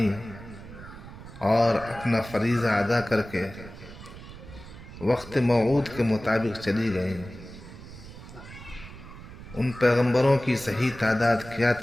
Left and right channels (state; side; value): noise; right; rumble, 15 dB below the sound